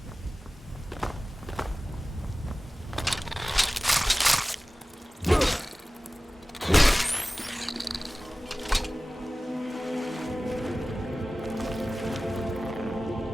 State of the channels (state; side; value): normal; both; correlation 0.97